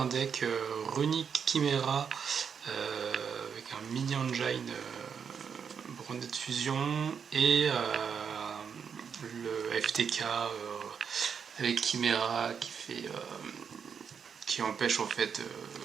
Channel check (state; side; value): quieter; left; 6.9 dB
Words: deck Runic Chimera avec un mini engine Branded Fusion et le FTK avec Chimera qui empêche en fait,